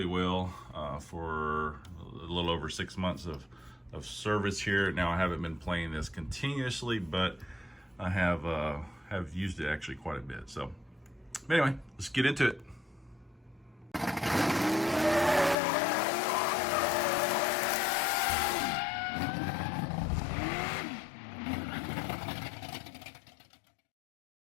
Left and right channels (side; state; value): right; drops out; at 15.6 s